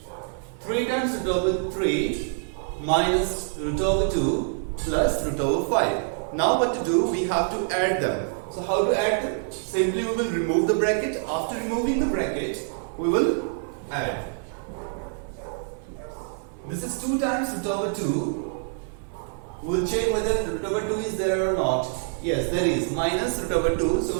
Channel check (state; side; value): silent; left; 58 dB below the other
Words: 3 times root over 3 minus root over 2 plus root over 5. Now what to do? We have to add them. So how to add them? Simply we will remove the bracket. After removing the bracket, we will add. This is 2 times root over 2. We'll check whether root over 2 is there or not. Yes, there is. Minus root over 2. So